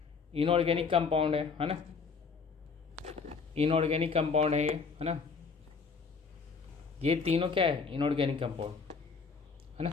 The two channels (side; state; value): right; quieter; 5.2 dB